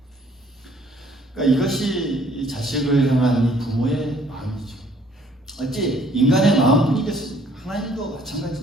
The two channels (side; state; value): both; normal; correlation 0.60